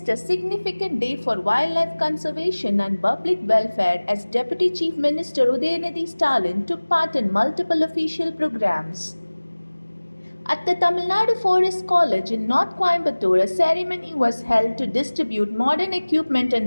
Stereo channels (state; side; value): inverted; both; correlation -1.00